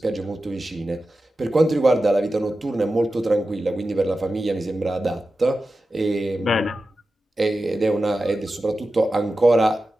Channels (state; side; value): normal; both; correlation 0.93